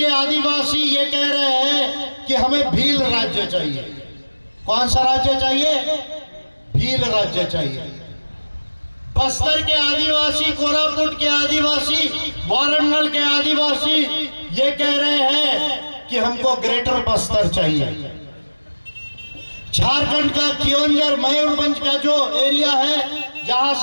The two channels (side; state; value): both; inverted; correlation -1.00